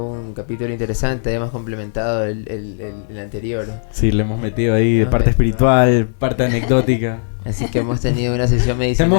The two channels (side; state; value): right; silent; digital silence